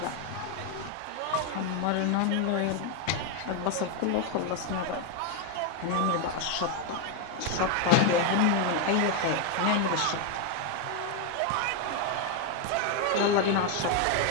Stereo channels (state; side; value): different; both; correlation 0.01